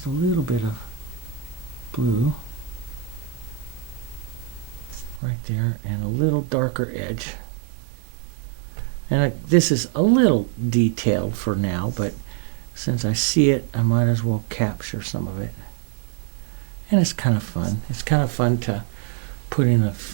a little bit of blue right there and a little darker edge. And this is a little detailed for now, but since I see it, I might as well capture some of it. And it's kind of fun. It's kind of fun put in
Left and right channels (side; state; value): left; drops out; at 5.2 s